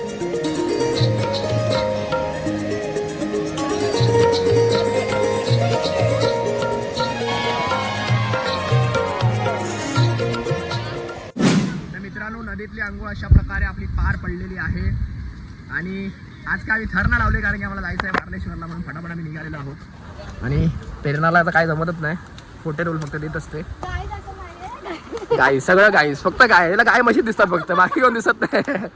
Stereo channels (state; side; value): identical; both; correlation 1.00